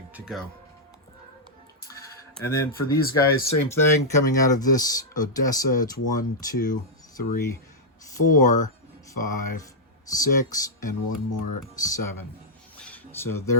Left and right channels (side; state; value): both; normal; correlation -0.07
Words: to go. And then for these guys, same thing, coming out of this Odessa, it's 1, 2, 3, 4, 5, 6, and one more 7. So